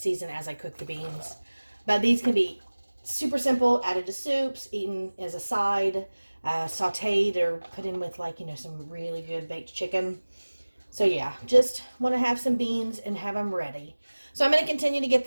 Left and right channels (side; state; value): both; inverted; correlation -1.00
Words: as I cook the beans. But these can be super simple, added to soups, eaten as a side, sauteed or put in with like, some really good baked chicken. So yeah, just want to have some beans and have them ready. So I'm going to continue to get